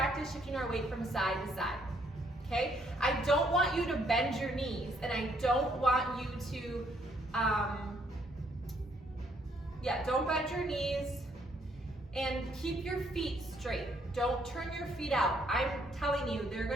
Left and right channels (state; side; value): normal; both; correlation 0.69